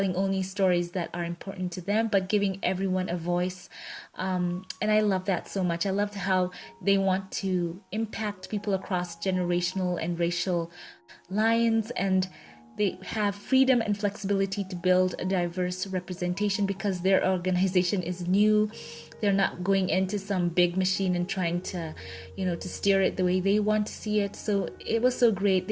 only stories that are important to them, but giving everyone a voice. And I love that so much. I loved how they want to impact people across generational and racial lines, and they have freedom and flexibility to build a diverse representation because their organization is new. They're not going into some big machine and trying to, to steer it the way they want to see it. So it was so great.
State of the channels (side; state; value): both; identical; correlation 1.00